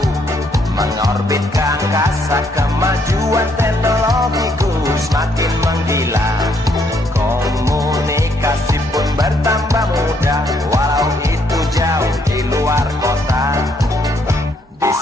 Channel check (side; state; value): both; normal; correlation 0.71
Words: mengorbit ke angkasa, kemajuan teknologiku semakin menggila. Komunikasi pun bertambah mudah, walau itu jauh di luar kota. Di